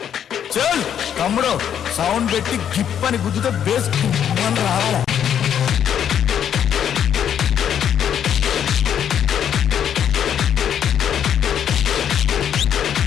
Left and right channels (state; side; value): quieter; right; 9.1 dB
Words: తమ్ముడు సౌండ్ పెట్టి గిప్ అని గుద్దుతో బేస్ రావాలి.